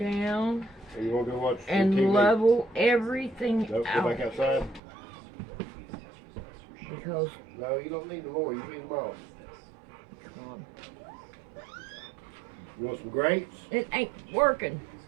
Or you want to go watch And TV? level everything Nope, out. go back outside. Because, No, you don't need them more. You need them all. come on. You want some grapes? It ain't working.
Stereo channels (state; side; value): drops out; left; at 4.8 s